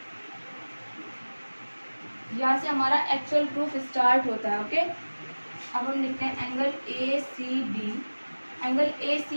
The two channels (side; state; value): both; inverted; correlation -1.00